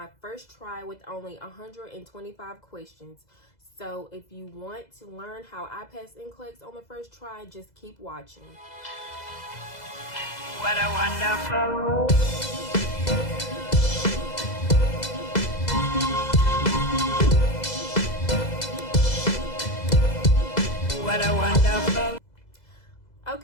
first try with only 125 questions. So if you want to learn how I passed N-Clex on the first try, just keep watching. What a wonderful world. What a wonderful.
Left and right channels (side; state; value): right; late; 2.0 ms